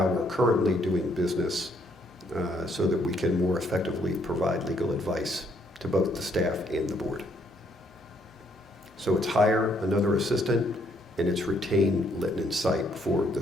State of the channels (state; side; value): normal; both; correlation 0.70